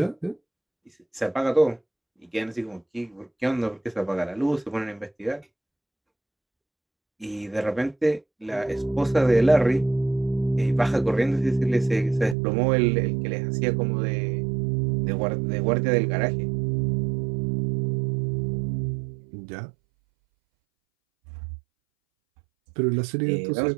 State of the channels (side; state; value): left; drops out; at 12.4 s